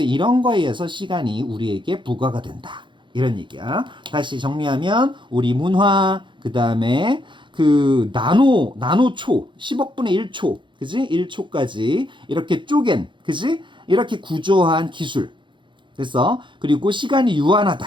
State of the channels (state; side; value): late; left; 0.23 ms